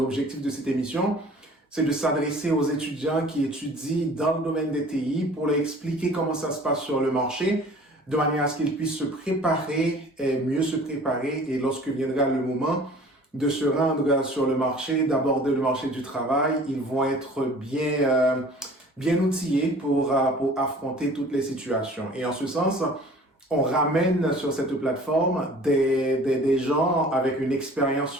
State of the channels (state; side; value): normal; both; correlation 0.48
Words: de cette émission, c'est de s'adresser aux étudiants qui étudient dans le domaine des TI pour leur expliquer comment ça se passe sur le marché, de manière à ce qu'ils puissent se préparer et mieux se préparer, et lorsque viendra le moment de se rendre sur le marché, d'aborder le marché du travail, ils vont être bien outillés pour affronter toutes les situations. Et en ce sens, on ramène sur cette plateforme des gens avec une expérience